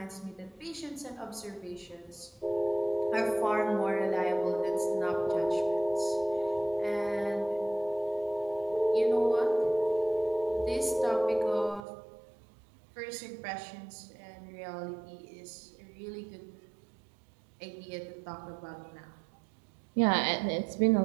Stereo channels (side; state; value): left; drops out; at 11.9 s